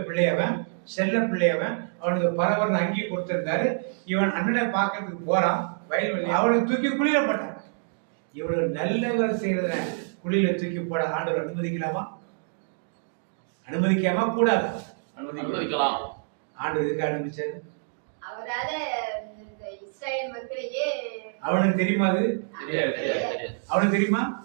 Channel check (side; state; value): left; silent; digital silence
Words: பிள்ளையவன், செல்ல பிள்ளையவன். அவனுக்கு பரவர்னு அங்கேயே கொடுத்திருந்தாரு. இவன் அண்ணனை பார்க்கறதுக்கு போறான் வயல்வெளி. அவனை தூக்கி குழியில போட்டான். இவ்வளவு நல்லவர் செய்யறத குழியில தூக்கி போட ஆண்டவர் அனுமதிக்கலாமா? அனுமதிக்காம கூடாது? அனுமதிக்கலாம். ஆண்டவர் எதுக்கு அனுமதிச்சாரு? அவரால இஸ்ரவேல் மக்களையே அவனுக்கு தெரியுமா? அது அவனுக்கு தெரியுமா?